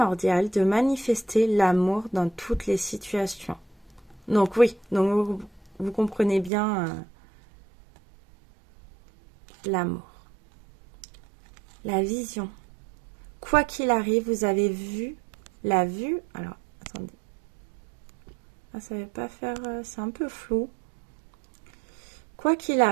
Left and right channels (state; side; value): drops out; left; at 6.5 s